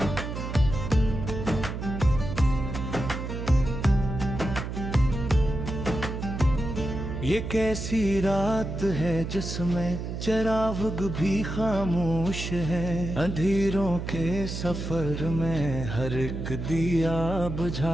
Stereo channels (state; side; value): noise; right; hum, 5 dB below the sound